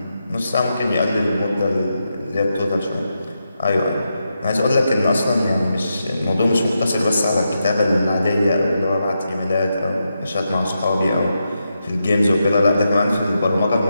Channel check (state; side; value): inverted; both; correlation -0.86